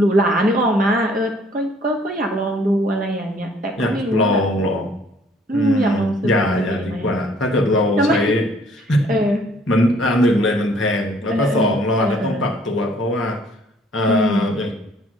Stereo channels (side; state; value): both; normal; correlation 0.60